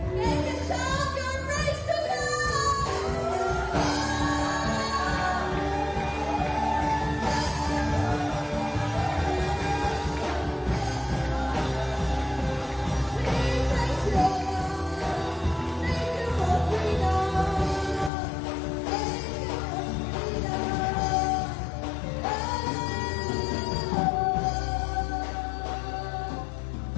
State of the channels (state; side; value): drops out; right; at 18.1 s